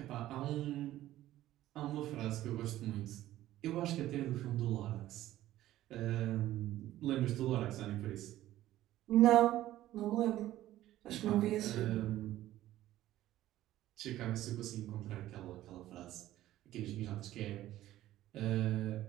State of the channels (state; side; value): quieter; left; 14.4 dB